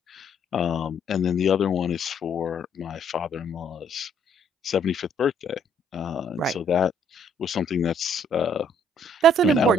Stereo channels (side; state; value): both; normal; correlation 0.65